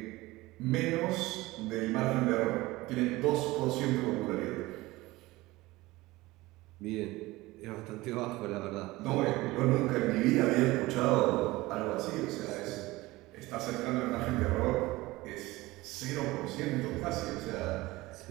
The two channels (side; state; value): left; quieter; 19.8 dB